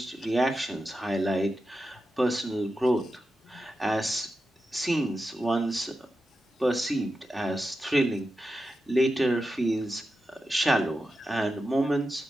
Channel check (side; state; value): both; normal; correlation 0.90